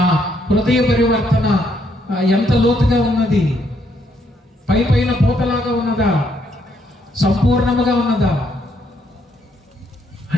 హృదయ పరివర్తన ఎంత లోతుగా ఉన్నది? పైన పూతలాగా ఉన్నదా? సంపూర్ణముగా ఉన్నదా?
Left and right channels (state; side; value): normal; both; correlation 0.73